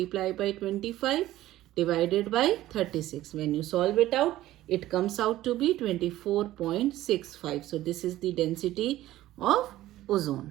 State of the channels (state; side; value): quieter; left; 15.0 dB